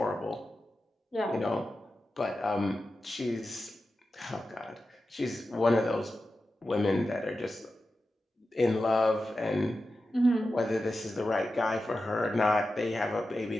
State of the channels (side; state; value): both; normal; correlation 0.92